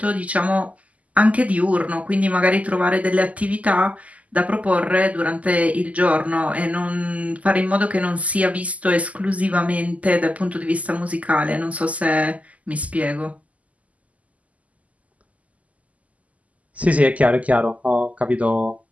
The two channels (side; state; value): left; late; 0.072 ms